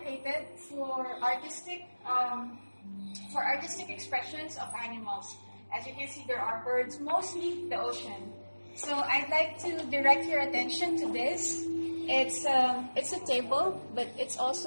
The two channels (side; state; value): both; inverted; correlation -1.00